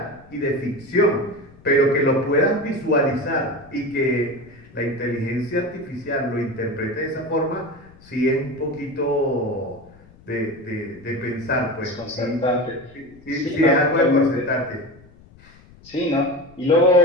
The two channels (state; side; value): noise; left; rumble, 25 dB below the sound